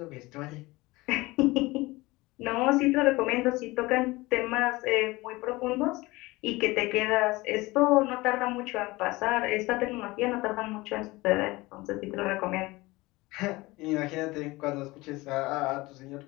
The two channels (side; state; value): right; quieter; 21.3 dB